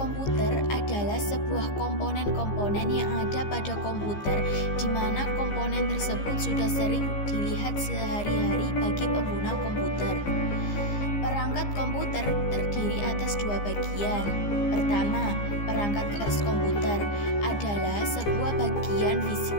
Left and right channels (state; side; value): late; right; 15 ms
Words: adalah sebuah komponen-komponen yang ada pada komputer, di mana komponen tersebut sudah sering dilihat sehari-hari bagi pengguna komputer. Perangkat komputer terdiri atas dua bagian. Pertama, perangkat keras komputer adalah sebuah bagian fisik